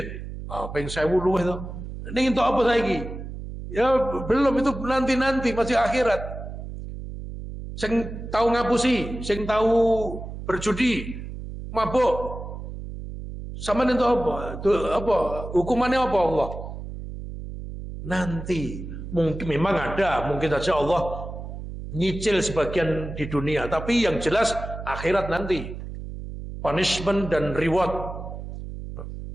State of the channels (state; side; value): noise; right; hum, 9 dB below the sound